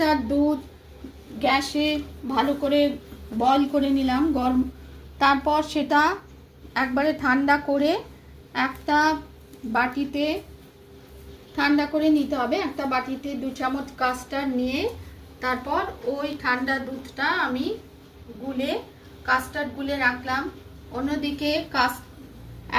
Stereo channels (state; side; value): identical; both; correlation 1.00